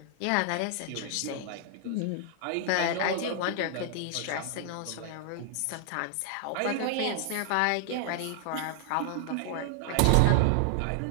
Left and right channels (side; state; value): both; different; correlation 0.00